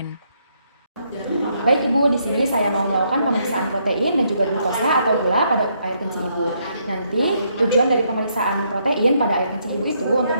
Baik Ibu, di sini saya mau melakukan pemeriksaan protein dan juga glukosa atau gula pada air kencing Ibu. Nanti tujuan dari pemeriksaan protein pada air kencing Ibu itu untuk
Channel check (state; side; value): inverted; both; correlation -0.74